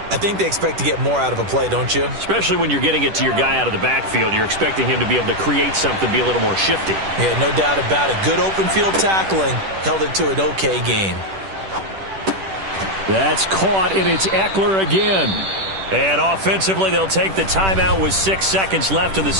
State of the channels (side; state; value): left; late; 10 ms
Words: I think they expect to get more out of a play, don't you? Especially when you're getting it to your guy out of the backfield. You're expecting him to be able to create something, be a little more shifty. Yeah, no doubt about it. Good open field tackling held it to an okay gain. That's caught, and it's Eckler again. And offensively, they'll take the timeout with 6 seconds left in the